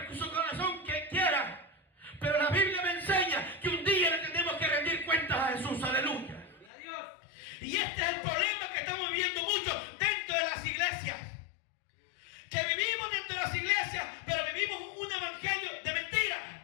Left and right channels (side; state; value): right; drops out; at 6.7 s